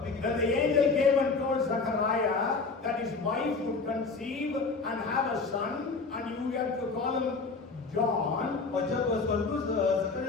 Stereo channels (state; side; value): quieter; right; 4.3 dB